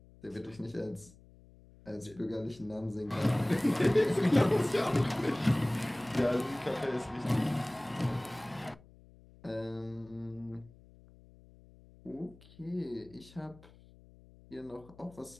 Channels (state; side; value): noise; left; hum, 24 dB below the sound